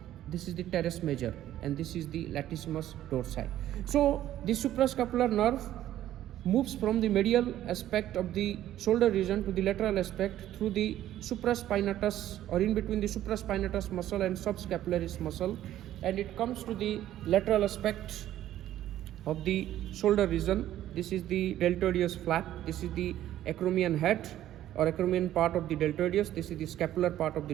This is the teres major, and this is the latissimus dorsi. So the suprascapular nerve moves from the medial aspect of the shoulder region to the lateral aspect through the supraspinatus, or in between the supraspinatus muscle and subscapularis muscle, and it comes to the lateral aspect of the shoulder region. This is the deltoideus flap. This is the acromion head or acromion part of the deltoideus. This is the scapular part of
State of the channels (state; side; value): quieter; left; 12.8 dB